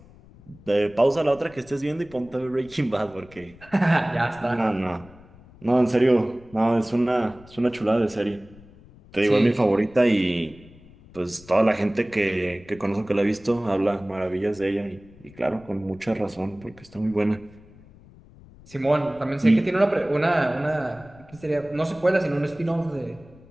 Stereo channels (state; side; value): noise; left; rumble, 23 dB below the sound